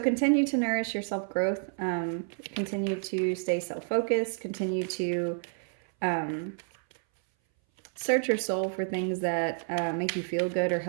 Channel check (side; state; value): left; silent; 58 dB below the other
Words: to nourish your self-growth. Continue to stay self-focused. Continue to search your soul for things that make you feel good or